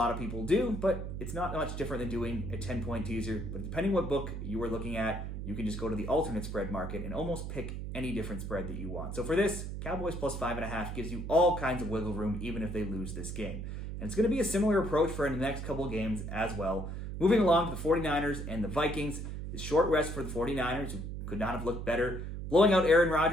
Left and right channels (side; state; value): right; noise; hum, 6 dB below the sound